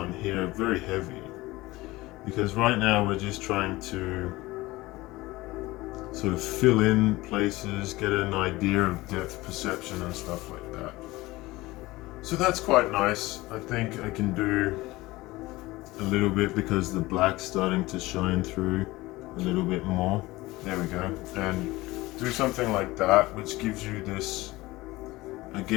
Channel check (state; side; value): quieter; right; 19.7 dB